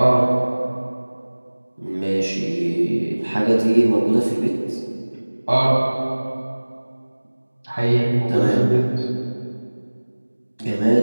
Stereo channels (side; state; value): both; inverted; correlation -1.00